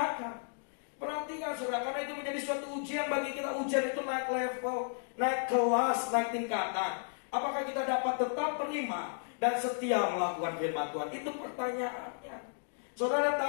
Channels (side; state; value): right; silent; digital silence